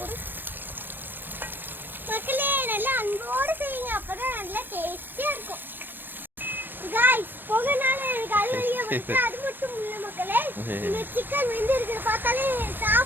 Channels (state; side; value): late; left; 0.095 ms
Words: மக்களே நல்லா அன்போடு செய்யுங்க, அப்பதான் நல்லா டேஸ்டியா இருக்கும். காய்ஸ் போகனால எனக்கு அது வழியா வந்து அது மட்டும் இல்ல மக்களே, இந்த சிக்கன் வெந்து இருக்கிறத பார்த்தாலே